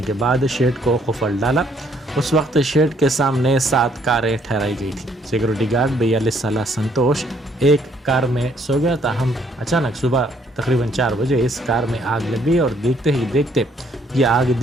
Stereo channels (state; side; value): normal; both; correlation 0.66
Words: के बाद शेड को खुफल डाला। उस वक्त शेड के सामने 7 कारें ठहराई गई थी। सिक्योरिटी गार्ड 42 साल संतोष एक कार में सो गया। ताहम अचानक सुबह तकरीबन 4 बजे इस कार में आग लग गई और देखते ही देखते ये आग